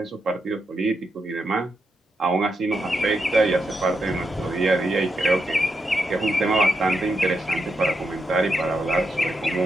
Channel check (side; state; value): both; normal; correlation 0.84